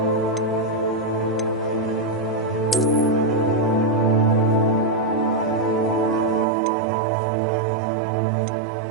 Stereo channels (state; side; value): drops out; left; at 6.5 s